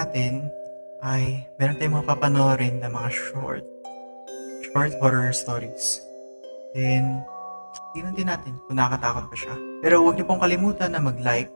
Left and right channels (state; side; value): inverted; both; correlation -1.00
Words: ay meron tayong mga papanoorin na mga short horror stories. Then, tingnan din natin kung nakakatakot pa siya. Pero huwag niyo pong kalimutan na mag-like,